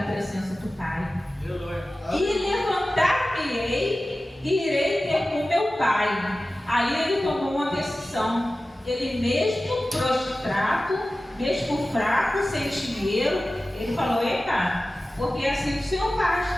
presença do Pai. E levantar-me-ei e irei ter com meu Pai. Aí ele tomou uma decisão. Ele mesmo prostrado, mesmo fraco, sem dinheiro, ele falou, eita, porque assim o Senhor faz.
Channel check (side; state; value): both; normal; correlation 0.96